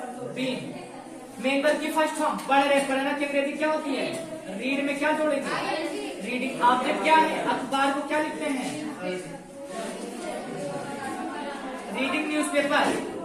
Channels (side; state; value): both; identical; correlation 1.00